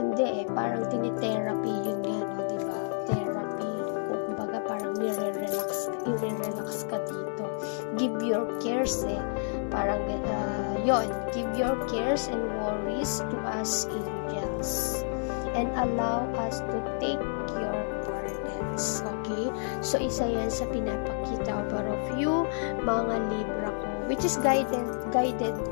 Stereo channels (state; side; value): silent; right; 58 dB below the other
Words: parang tinitherapy yun nga, no, diba? Therapy, kumbaga parang nire-relax ka dito. Give your cares, parang yon, give your cares and worries to us, angels, and allow us to take your burdens. Okay, so isa yan sa pinapakita about of you, mga Libra ko, which is guided